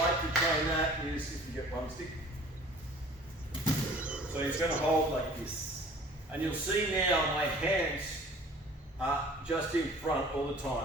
like to train that is if you get one stick. So he's going to hold like this. And you'll see now my hands are just in front all the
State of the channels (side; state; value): both; normal; correlation 0.48